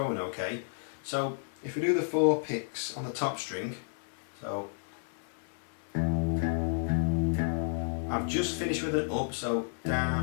okay? So if we do the 4 picks on the top string, so I've just finished with an up, so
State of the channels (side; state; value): right; silent; 57 dB below the other